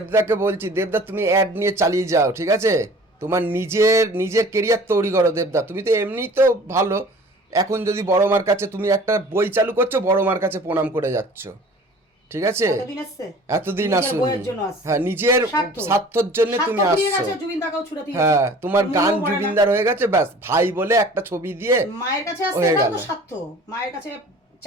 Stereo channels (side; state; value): both; normal; correlation 0.46